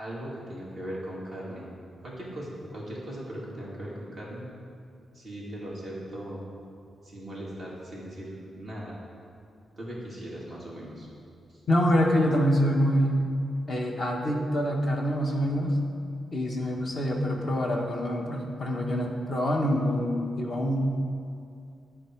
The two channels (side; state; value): both; normal; correlation 0.84